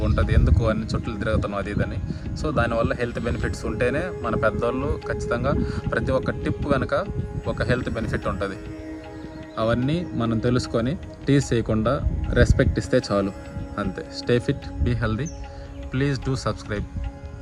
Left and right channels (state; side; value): identical; both; correlation 1.00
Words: ఉంటుంది, ఎందుకు అన్ని చుట్టూ తిరుగుతున్నాం అది ఇదని. సో దానివల్ల హెల్త్ బెనిఫిట్స్ ఉంటేనే మన పెద్దవాళ్ళు ఖచ్చితంగా ప్రతి ఒక్క టిప్ కనుక ఒక హెల్త్ బెనిఫిట్ ఉంటుంది. అవన్నీ మనం తెలుసుకొని టీస్ చేయకుండా రెస్పెక్ట్ ఇస్తే చాలు, అంతే. Stay fit, be healthy. Please do subscribe